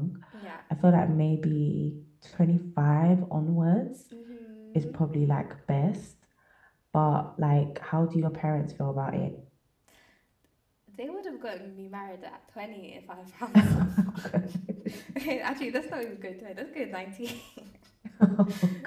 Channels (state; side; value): identical; both; correlation 1.00